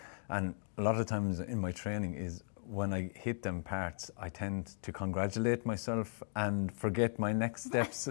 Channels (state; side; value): silent; right; 53 dB below the other